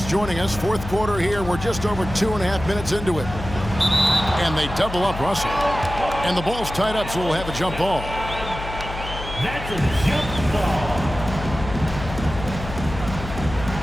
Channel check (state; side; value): noise; left; hum, 9 dB below the sound